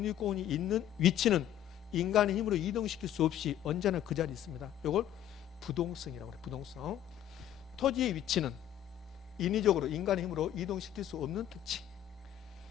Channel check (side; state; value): right; quieter; 11.2 dB